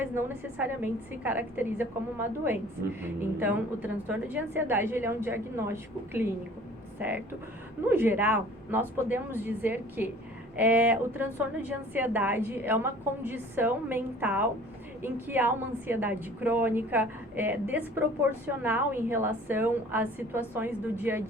não necessariamente se caracteriza como uma doença. Então, o transtorno de ansiedade, ele é um diagnóstico clínico, certo? No geral, nós podemos dizer que o transtorno de ansiedade é uma condição mental em que há uma ansiedade crônica, desproporcional em relação às situações do dia a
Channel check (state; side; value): normal; both; correlation 0.49